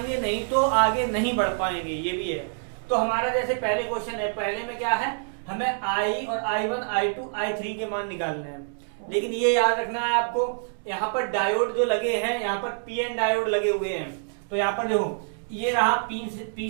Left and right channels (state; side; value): silent; left; digital silence